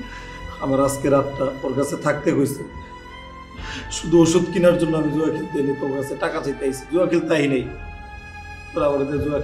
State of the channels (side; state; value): both; identical; correlation 1.00